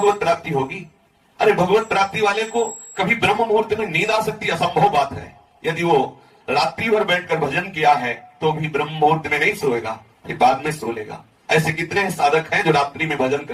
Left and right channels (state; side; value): identical; both; correlation 1.00